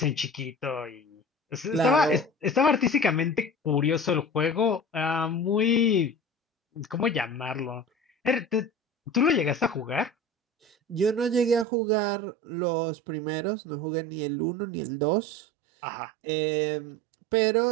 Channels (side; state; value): left; drops out; at 11.7 s